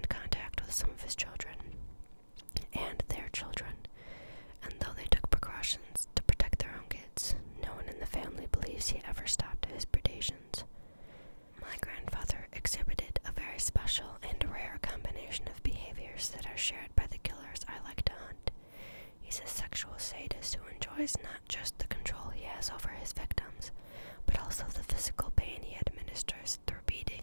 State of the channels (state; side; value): inverted; both; correlation -1.00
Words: contact with some of his children and their children, and though they took precautions to protect their own kids, no one in the family believes he ever stopped his predations. My grandfather exhibited a very special and rare combination of behaviors that are shared by the killers I like to hunt. He's a sexual sadist who enjoys not just the control he has over his victims, but also the physical pain he administers through